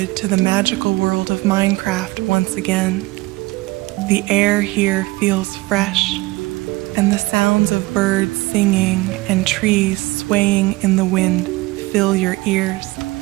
to the magical world of Minecraft once again. The air here feels fresh, and the sounds of birds singing and trees swaying in the wind fill your ears.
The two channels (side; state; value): left; quieter; 21.2 dB